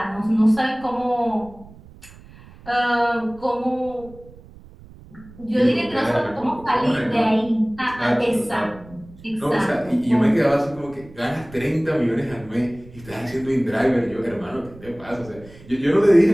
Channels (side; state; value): right; noise; rumble, 21 dB below the sound